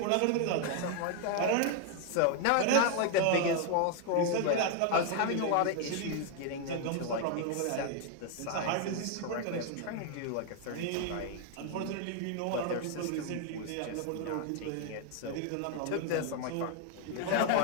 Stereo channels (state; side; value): different; both; correlation 0.00